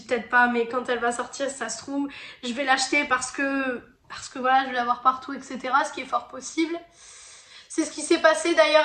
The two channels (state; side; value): identical; both; correlation 1.00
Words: peut-être pas, mais quand elle va sortir, ça se trouve, je vais l'acheter parce que voilà, je vais l'avoir partout, etc. Ce qui est fort possible. C'est ce qui s'est passé